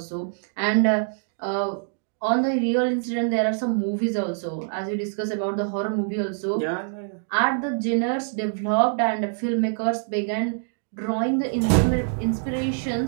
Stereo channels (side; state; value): left; silent; digital silence